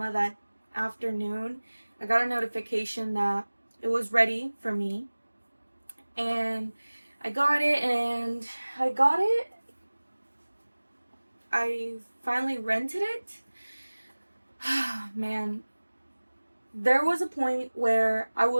that afternoon, I got a notification that it was ready for me. And I got it, I finally rented it. Man, there was a point where I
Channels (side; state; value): both; inverted; correlation -1.00